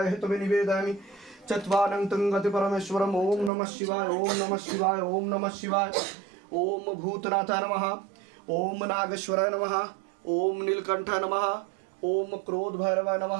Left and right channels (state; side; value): drops out; left; at 3.5 s